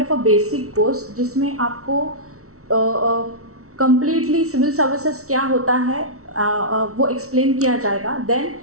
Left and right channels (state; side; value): late; left; 0.64 ms